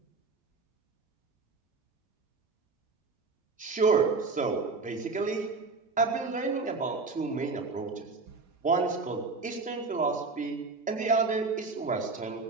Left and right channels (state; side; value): quieter; left; 4.1 dB